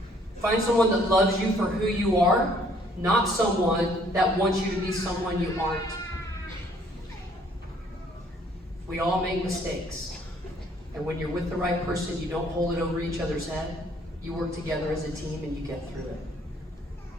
Find someone that loves you for who you are, not someone that wants you to be someone you aren't. We all make mistakes. And when you're with the right person, you don't hold it over each other's head. You work together as a team and you get through it.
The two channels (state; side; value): normal; both; correlation 0.62